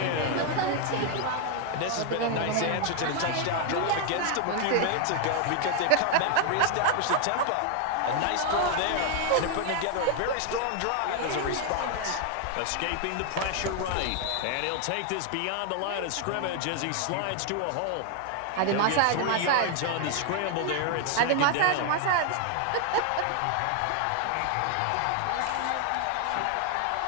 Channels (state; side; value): different; both; correlation 0.00